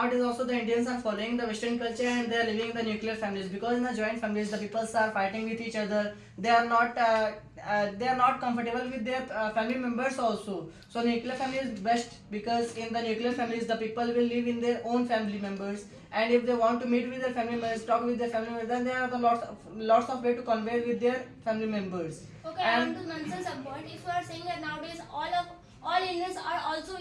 also the Indians are following the Western culture and they are living in the nuclear families, because in the joint families the peoples are fighting with each other. They are not comfortable with their family members also. So nuclear family is best, because in the nuclear families the people will live in their own family members, and if they want to meet with their family members, talk with their family members, then there are the lots of way to convey with their family members. Okay, I want to mention some point. If you are saying that nowadays all Indians are also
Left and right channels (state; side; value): identical; both; correlation 1.00